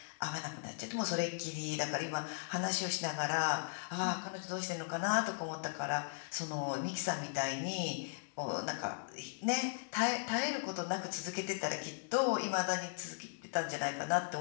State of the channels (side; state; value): right; silent; digital silence